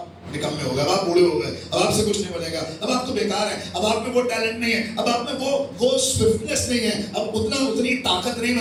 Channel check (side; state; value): both; identical; correlation 1.00